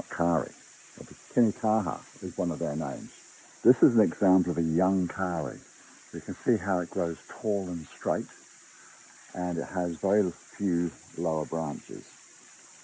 kauri. Kinikaha is one of their names. This is an example of a young kauri. You can see how it grows tall and straight, and it has very few lower branches.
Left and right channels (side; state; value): both; identical; correlation 1.00